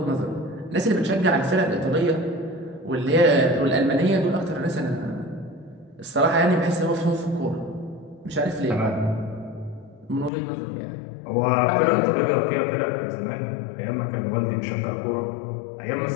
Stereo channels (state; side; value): drops out; right; at 10.3 s